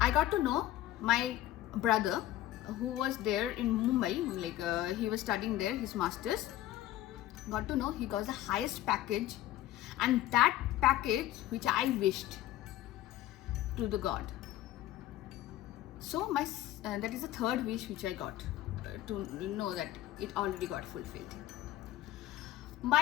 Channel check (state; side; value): quieter; right; 14.3 dB